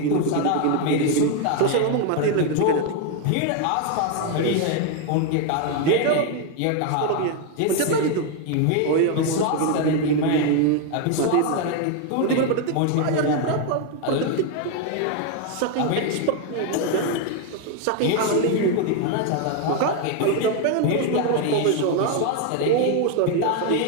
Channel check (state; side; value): different; both; correlation 0.01